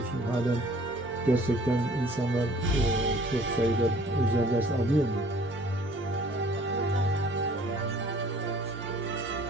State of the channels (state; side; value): normal; both; correlation 0.54